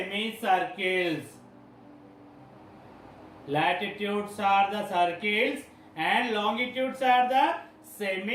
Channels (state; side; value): identical; both; correlation 1.00